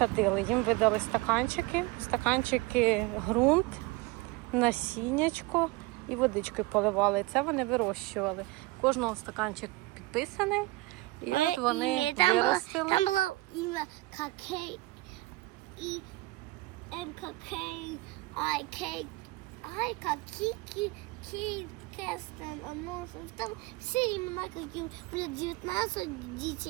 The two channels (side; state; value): left; quieter; 20.7 dB